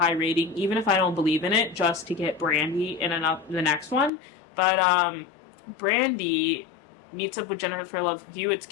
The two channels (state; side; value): drops out; right; at 4.1 s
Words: rating, even if I don't believe in it, just to get Brandy in the next one. But, Brandy meets up with Jennifer Love Hewitt's